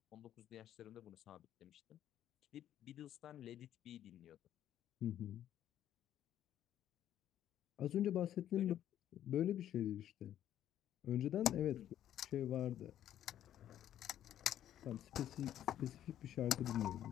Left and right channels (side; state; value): right; quieter; 11.3 dB